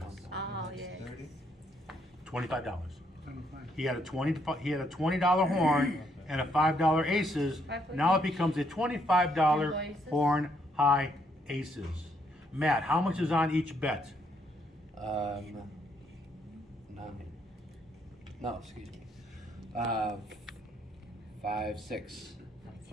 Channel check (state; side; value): normal; both; correlation 0.72